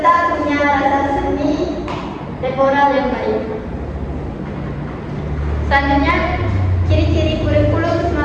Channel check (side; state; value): both; identical; correlation 1.00